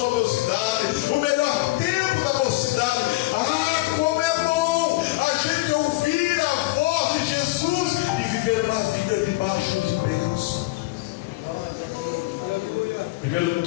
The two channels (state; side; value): quieter; right; 20.8 dB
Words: mocidade, o melhor tempo da mocidade. Ah, como é bom a gente ouvir a voz de Jesus e viver uma vida debaixo de bênção. Primeiro